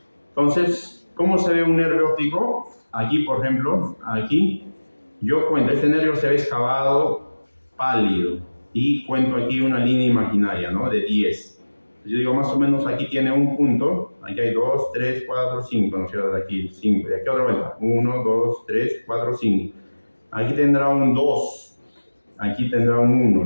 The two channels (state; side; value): inverted; both; correlation -1.00